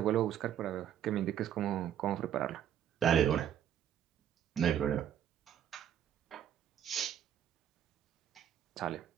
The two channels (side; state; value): left; quieter; 10.0 dB